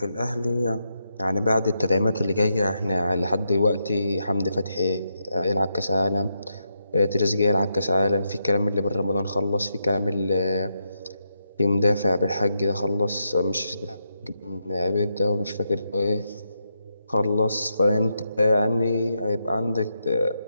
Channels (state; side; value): inverted; both; correlation -0.83